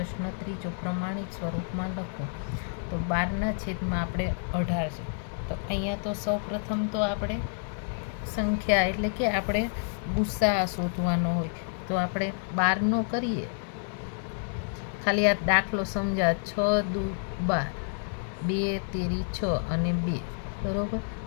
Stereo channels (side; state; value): right; silent; 59 dB below the other